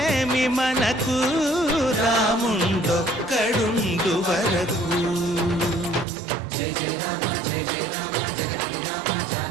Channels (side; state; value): left; drops out; at 6.1 s